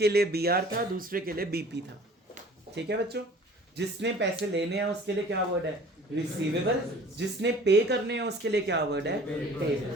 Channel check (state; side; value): normal; both; correlation 0.48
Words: लिए BR था, दूसरे के लिए BP था। ठीक है बच्चों, जिसने पैसे लेने हैं उसके लिए क्या वर्ड है? रिसीवेबल। जिसने पे करने हैं उसके लिए क्या वर्ड है?